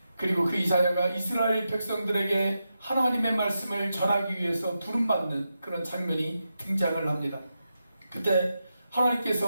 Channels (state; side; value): inverted; both; correlation -0.88